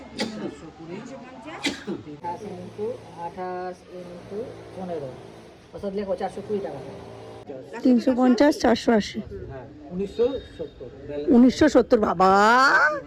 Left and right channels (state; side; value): identical; both; correlation 1.00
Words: ইন্টু 28 ইন্টু 15, অর্থাৎ লেখো 420 টাকা। 350, 480। হ্যাঁ, 1970। 1970। বাবা